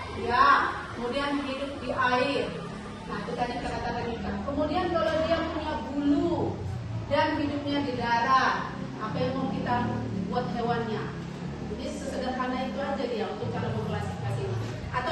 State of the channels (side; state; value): both; identical; correlation 1.00